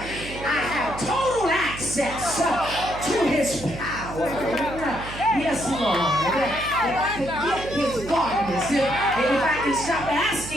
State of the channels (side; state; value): right; noise; hum, 11 dB below the sound